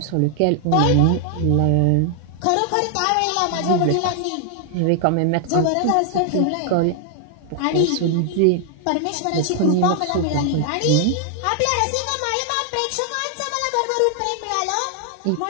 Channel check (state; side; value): different; both; correlation 0.00